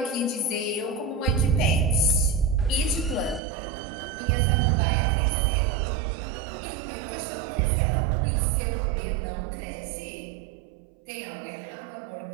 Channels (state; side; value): drops out; left; at 3.4 s